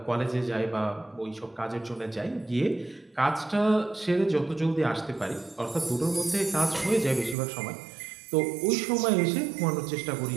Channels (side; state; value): left; drops out; at 7.4 s